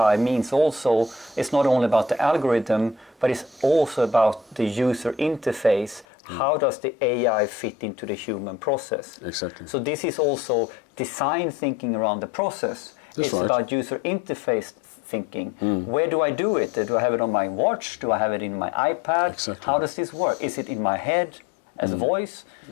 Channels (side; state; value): right; drops out; at 6.1 s